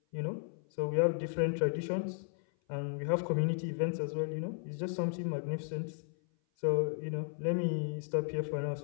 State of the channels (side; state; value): right; silent; 55 dB below the other